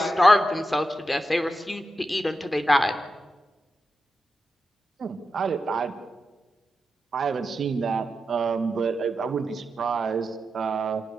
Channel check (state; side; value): normal; both; correlation 0.88